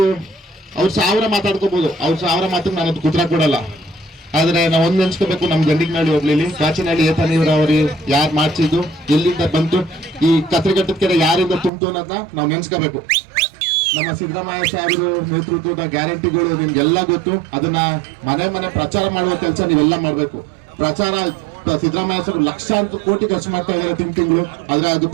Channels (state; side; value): drops out; left; at 11.7 s